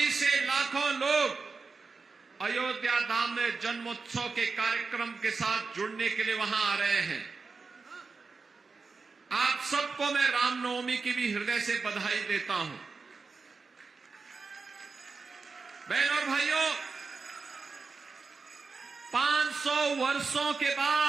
से लाखों लोग अयोध्या धाम में जन्मोत्सव के कार्यक्रम के साथ जुड़ने के लिए वहां आ रहे हैं। आप सबको मैं रामनवमी की भी हृदय से बधाई देता हूं। बहनों और भाइयों, 500 वर्षों के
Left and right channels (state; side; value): quieter; left; 4.5 dB